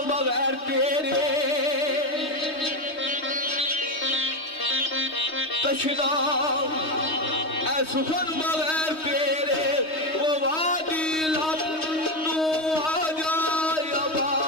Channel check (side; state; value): right; late; 3.2 ms